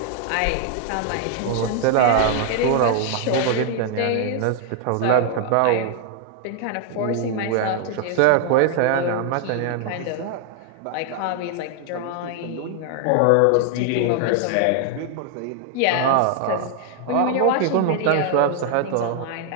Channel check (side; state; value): both; different; correlation 0.00